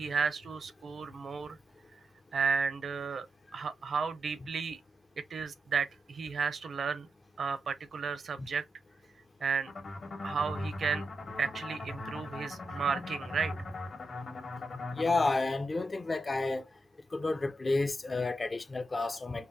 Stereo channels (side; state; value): both; normal; correlation 0.86